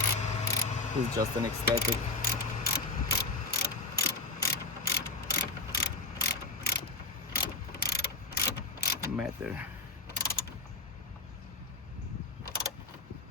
It's just an aesthetic. Matter.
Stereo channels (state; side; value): quieter; right; 3.3 dB